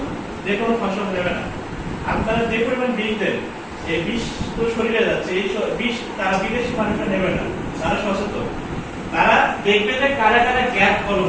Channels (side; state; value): both; identical; correlation 1.00